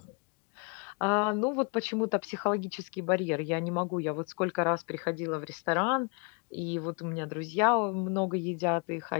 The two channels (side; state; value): right; quieter; 34.9 dB